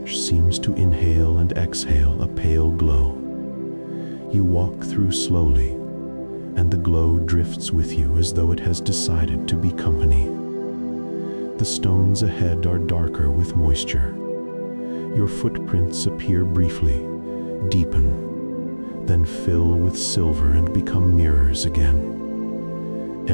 seems to inhale and exhale a pale glow. You walk through slowly, and the glow drifts with you as though it has decided to be company. The stones ahead are darker with moisture. Your footprints appear briefly, deepen, then fill with silver and become mirrors again.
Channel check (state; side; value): inverted; both; correlation -1.00